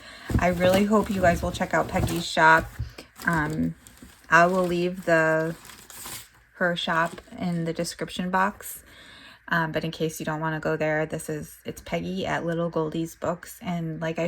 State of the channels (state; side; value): identical; both; correlation 1.00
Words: I really hope you guys will check out Peggy's shop. I will leave her shop in the description box. But in case you don't want to go there, it's Peggy at LittleGoldiesBooks. And like I